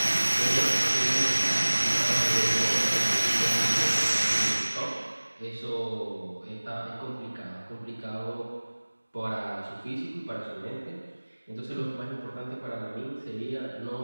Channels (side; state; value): both; inverted; correlation -1.00